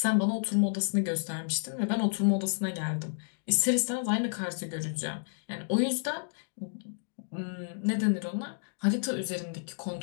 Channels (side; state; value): right; silent; digital silence